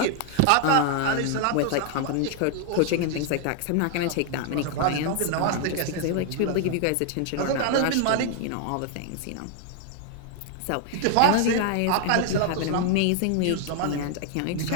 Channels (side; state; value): both; different; correlation 0.00